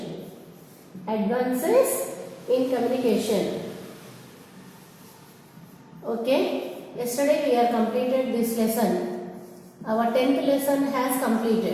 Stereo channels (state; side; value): identical; both; correlation 1.00